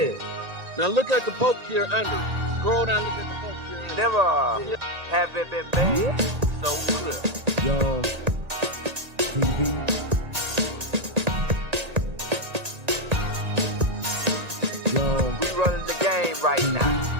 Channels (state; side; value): late; left; 1.8 ms